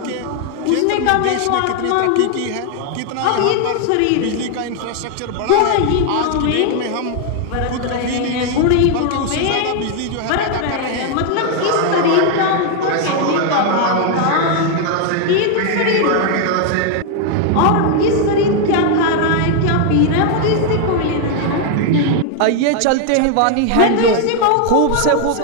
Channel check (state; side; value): different; both; correlation 0.00